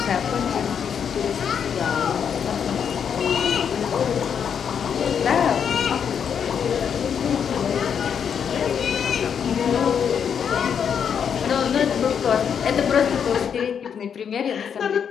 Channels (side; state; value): right; quieter; 7.6 dB